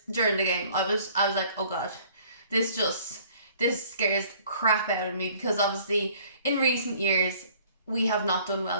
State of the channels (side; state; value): both; inverted; correlation -0.55